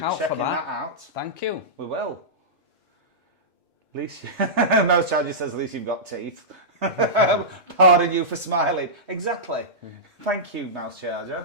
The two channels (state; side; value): normal; both; correlation -0.15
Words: out checking for that. out. Thank you. We will. At least, Mouse Charger says, at least you've got teeth. Pardon you for smiling. Exactly. Thank you, Mouse